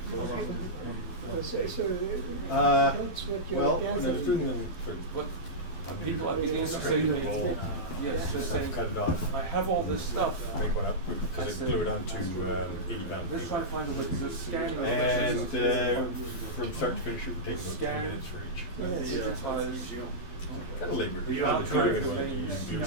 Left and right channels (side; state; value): right; late; 12 ms